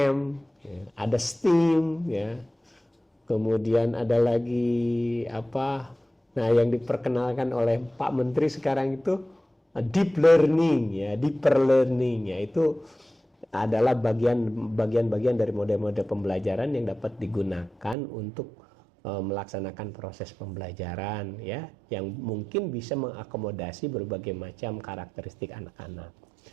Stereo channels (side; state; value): left; drops out; at 17.9 s